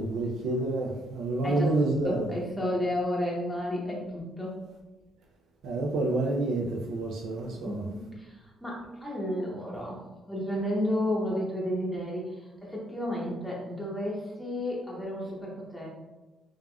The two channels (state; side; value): normal; both; correlation 0.71